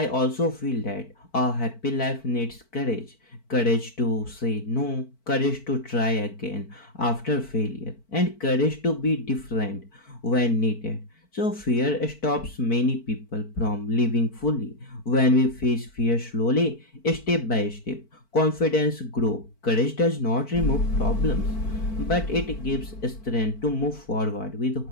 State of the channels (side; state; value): right; late; 4.5 ms